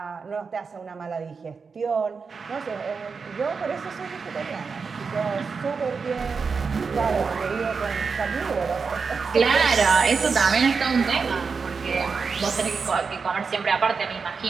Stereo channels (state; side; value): quieter; left; 5.2 dB